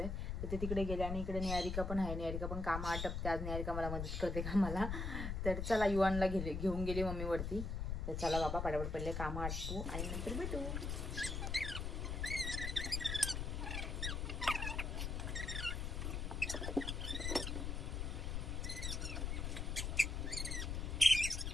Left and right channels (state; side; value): noise; left; rumble, 2 dB below the sound